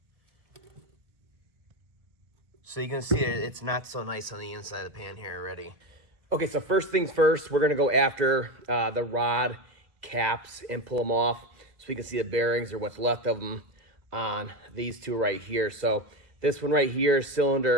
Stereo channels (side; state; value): left; late; 1.5 ms